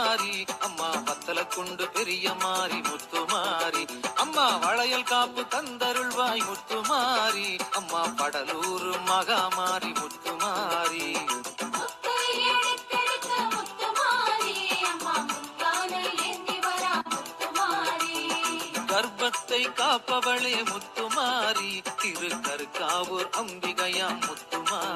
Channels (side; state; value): both; identical; correlation 1.00